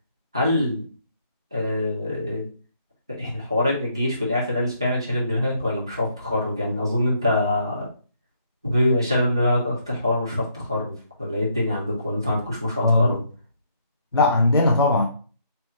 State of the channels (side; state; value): both; inverted; correlation -0.70